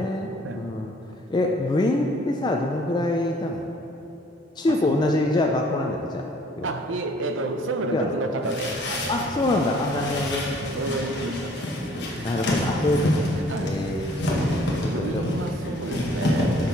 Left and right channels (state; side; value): normal; both; correlation 0.57